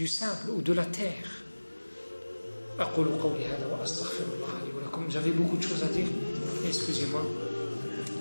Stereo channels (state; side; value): inverted; both; correlation -1.00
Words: sable ou de la terre. J'avais beaucoup de choses à dire, excusez-moi.